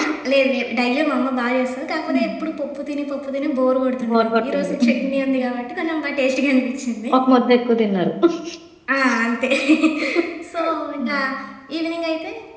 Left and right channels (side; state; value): both; identical; correlation 1.00